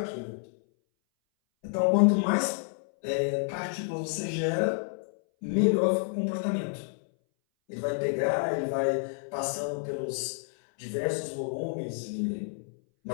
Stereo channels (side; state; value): right; silent; 58 dB below the other